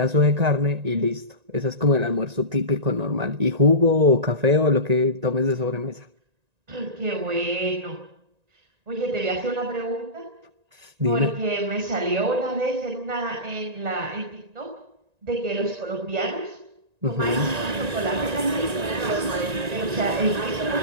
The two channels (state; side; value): late; left; 1.9 ms